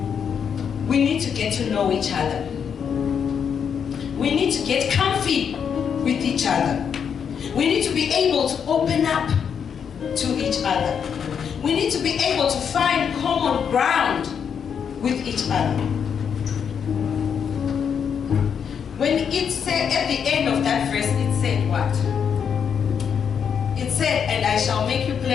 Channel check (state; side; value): quieter; right; 7.3 dB